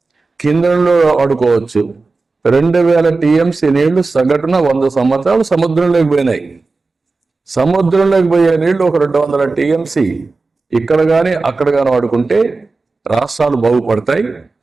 కిందలో వాడుకోవచ్చు. 2000 టీఎంసీ నీళ్లు సగటున 100 సంవత్సరాలు సముద్రంలోకి పోయినాయి. సముద్రంలోకి పోయే నీళ్లు ఒక 200 టీఎంసీ ఇక్కడ కానీ అక్కడ కానీ వాడుకుంటే రాష్ట్రాలు బాగుపడతాయి,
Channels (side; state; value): left; quieter; 3.8 dB